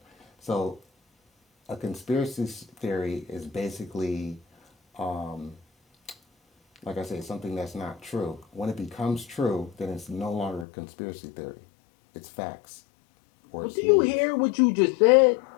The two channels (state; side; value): drops out; right; at 10.7 s